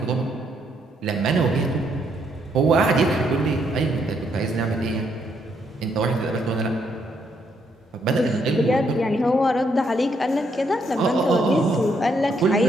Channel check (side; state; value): both; normal; correlation 0.74